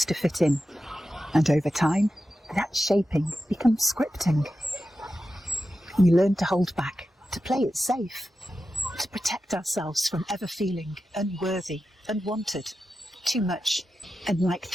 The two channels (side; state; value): both; normal; correlation 0.92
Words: to fit in. And over time, that shaping becomes scripting. We learn to hold back, to play it safe, to protect ourselves from ever feeling unworthy, unwanted, too much, and like